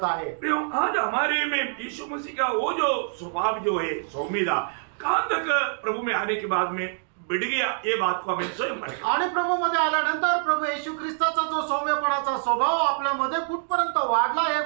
आहे. आज हमारे में यीशु मसीह का वो जो स्वभाव जो है सौम्यता कहाँ तक प्रभु में आने के बाद में बढ़ गया, ये बात को हमें स्वयं पड़ेगा. आणि प्रभू मध्ये आल्यानंतर प्रभू येशू ख्रिस्ताचा जो सौम्यपणाचा स्वभाव आपल्यामध्ये कुठपर्यंत वाढला हे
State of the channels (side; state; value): left; silent; 61 dB below the other